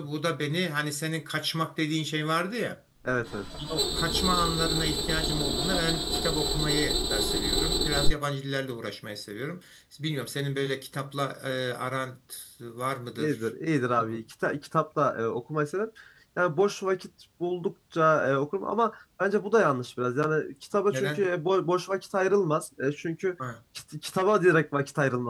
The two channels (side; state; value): both; identical; correlation 1.00